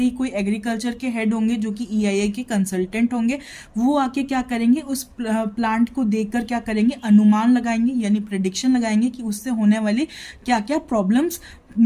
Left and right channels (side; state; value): both; identical; correlation 1.00